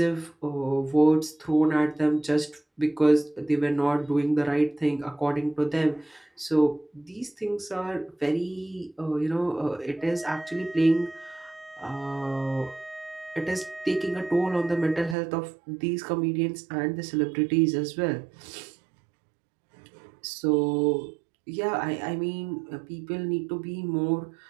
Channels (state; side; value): drops out; left; at 15.2 s